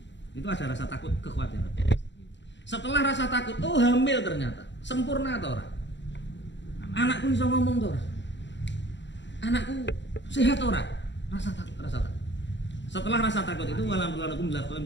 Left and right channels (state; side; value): late; right; 0.52 ms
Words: Itu ada rasa takut, kekhawatiran. Setelah rasa takut, oh hamil ternyata. Sempurna to ora? Anakku iso ngomong to ora? Anakku sehat to ora? Rasa takut. Setelah rasa takut itu walam lakum lakum